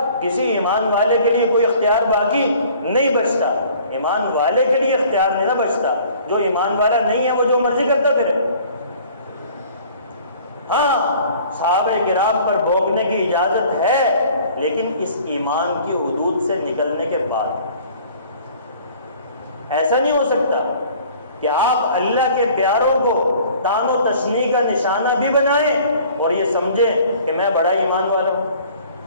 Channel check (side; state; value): both; inverted; correlation -0.52